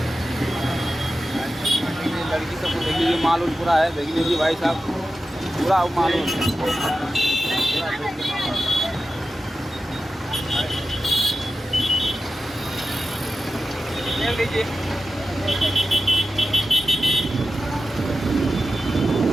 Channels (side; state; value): both; normal; correlation 0.93